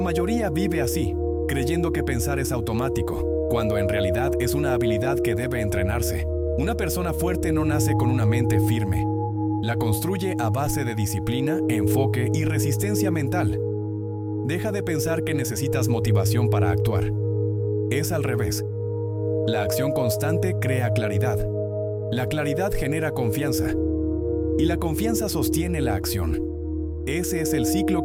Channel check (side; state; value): both; identical; correlation 1.00